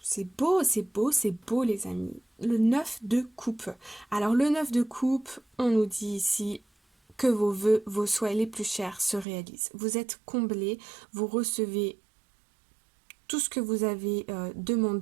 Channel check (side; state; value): left; drops out; at 9.2 s